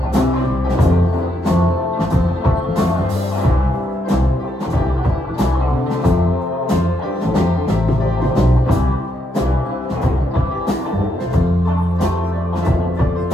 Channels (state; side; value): normal; both; correlation 0.78